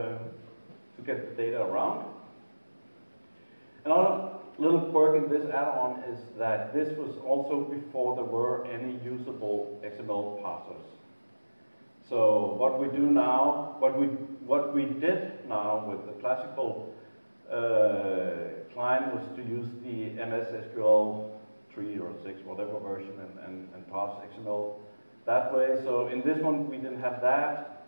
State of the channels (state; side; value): inverted; both; correlation -1.00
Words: get the data around. Another little quirk in this add-on is that this was also before there were any usable XML parsers. So what we do now, what we did now with the classical client was to use the MS SQL 3 or 6, whatever version, and parse XML that way. So in this one we didn't have that,